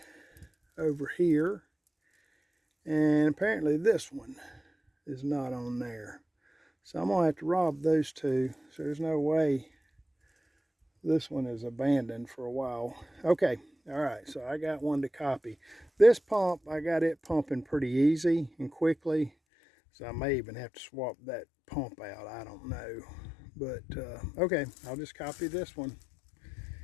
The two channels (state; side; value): drops out; right; at 19.3 s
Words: over here, and apparently this one is not on there. So I'm gonna have to rob those two. So there's no way this one is abandoned for a while. Okay, all right, so I got one to copy. This pump, I got it pumping pretty easy and quickly. So I may even have to swap that pump out, I don't know. But okay, I'll just copy this one.